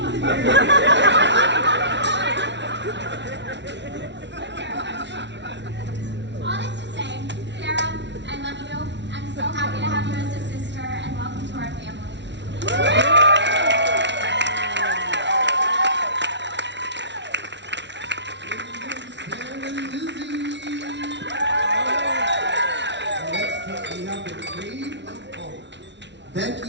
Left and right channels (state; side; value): late; left; 0.51 ms